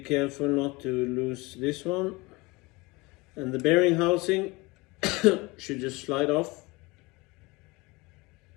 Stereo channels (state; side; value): quieter; right; 23.9 dB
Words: not to lose this one. And the bearing housing should just slide off.